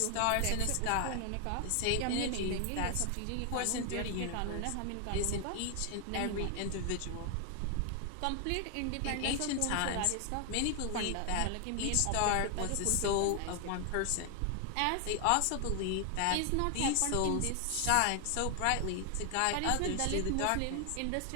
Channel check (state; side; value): different; both; correlation 0.00